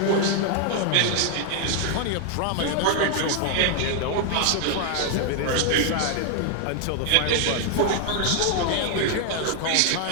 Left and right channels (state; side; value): different; both; correlation 0.00